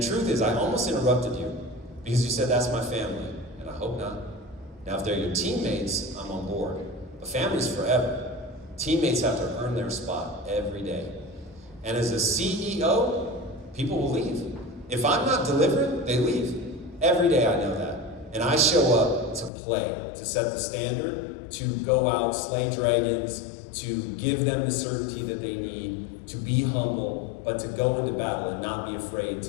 truth is, I almost interrupted you because you said, that's my family. And I hope not. Now, if they're your teammates, I'm on board. But family's forever. Teammates have to earn their spot every day. And as a CEO, people will leave. If I'm not delivering, they leave. Every day I know that. And I show up to play, to set the standard, to go out, slay dragons, to give them the certainty that they need, to be humble, but to go into battle and not be afraid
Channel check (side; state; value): right; drops out; at 19.5 s